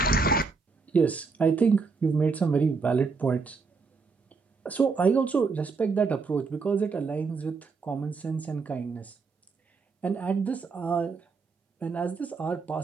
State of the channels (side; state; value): left; quieter; 4.7 dB